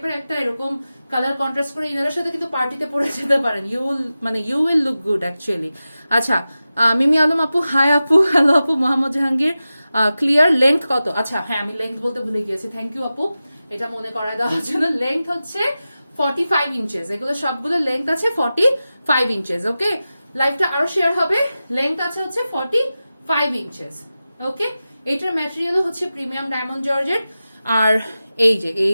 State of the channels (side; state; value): both; inverted; correlation -0.94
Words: একটা এরকম কালার কন্ট্রাস্ট করে ইনারের সাথে কিন্তু পার্টিতে পরে যেতে পারেন, you will look good actually. আচ্ছা মিমি আলম আপু, হাই আপু, হ্যালো আপু। মোহাম্মদ জাহাঙ্গীর ক্লিয়ার, লেন্থ কত? আচ্ছা হ্যাঁ আমি লেন্থ বলতে ভুলে গিয়েছি, থ্যাংক ইউ আপু এটা মনে করায় দেওয়ার জন্য। লেন্থ হচ্ছে 45 ইঞ্চেস, এগুলো সবগুলো লেন্থ আছে 45 ইঞ্চেস। ওকে, লাইভটা আরো শেয়ার হবে, লেন্থ আছে হচ্ছে 45 ইঞ্চেস। ওকে, এটার ম্যাটেরিয়ালও হচ্ছে প্রিমিয়াম ডায়মন্ড জর্জেট। আর এই যে